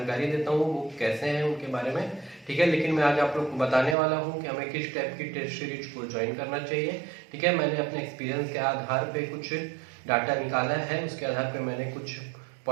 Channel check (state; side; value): drops out; left; at 4.0 s